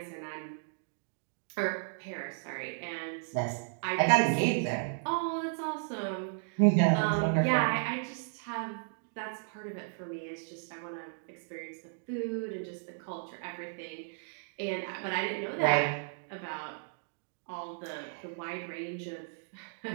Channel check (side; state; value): left; silent; digital silence